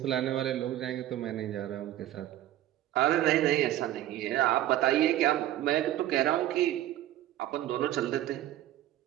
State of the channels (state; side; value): quieter; left; 13.5 dB